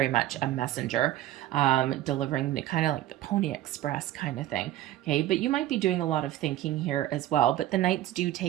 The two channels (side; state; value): left; quieter; 13.9 dB